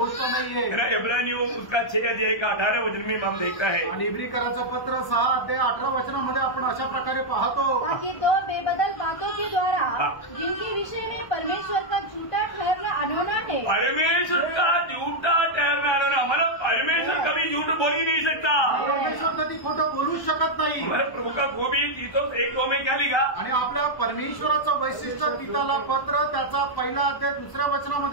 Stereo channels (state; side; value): late; right; 1.3 ms